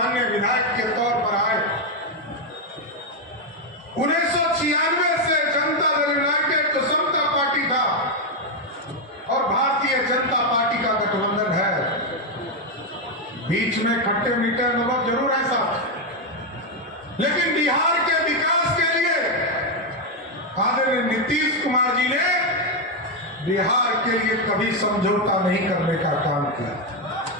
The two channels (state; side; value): normal; both; correlation 0.04